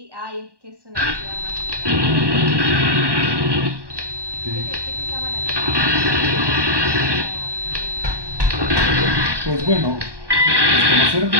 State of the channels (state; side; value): late; left; 1.2 ms